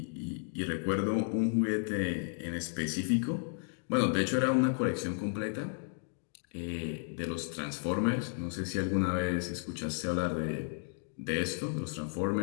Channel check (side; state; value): right; silent; 56 dB below the other